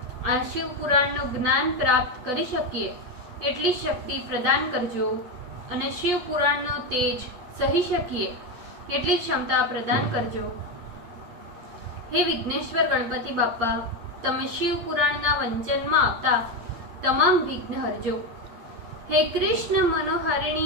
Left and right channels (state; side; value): late; left; 8.7 ms